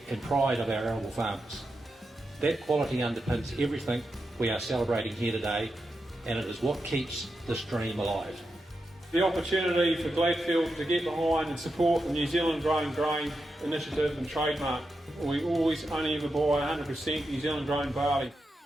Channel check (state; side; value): normal; both; correlation 0.88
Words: and pride of our arable farmers. That quality underpins everything we are celebrating here today, and it is what keeps this dream alive. The opportunity for Gladfield to get behind and support the New Zealand Grown Grain initiative and trademark. We always only ever buy 100% New Zealand grown barley.